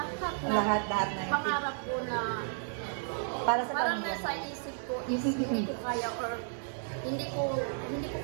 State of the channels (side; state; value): left; silent; digital silence